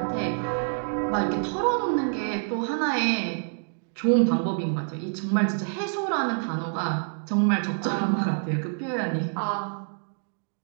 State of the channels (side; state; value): left; silent; 60 dB below the other